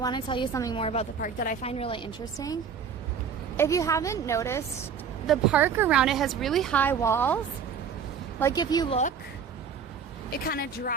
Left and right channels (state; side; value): quieter; left; 6.7 dB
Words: to tell you something more about the park that I find really interesting. If you haven't noticed, the park around it has really high walls. Like if you look, it kind of